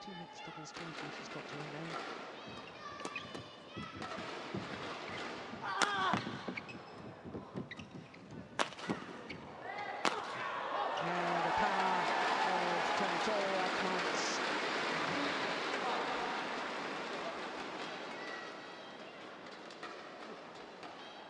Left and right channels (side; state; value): both; identical; correlation 1.00